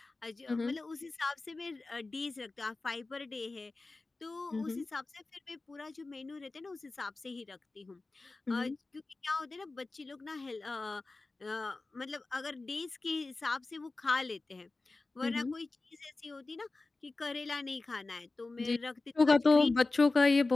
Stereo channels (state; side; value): quieter; right; 3.4 dB